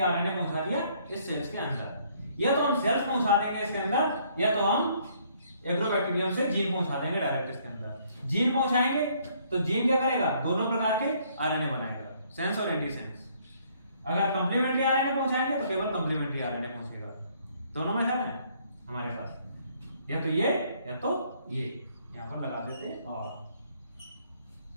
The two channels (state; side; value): inverted; both; correlation -0.65